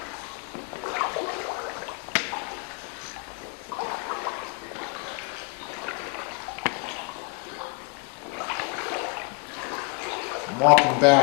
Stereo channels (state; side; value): quieter; right; 31.6 dB